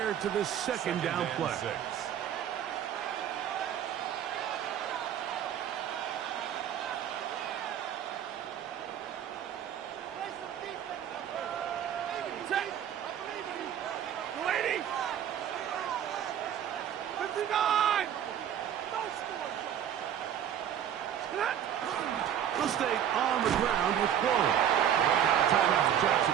to this second down play. They'll stay on the ground with Quillen. Timeout to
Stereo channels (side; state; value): left; quieter; 9.8 dB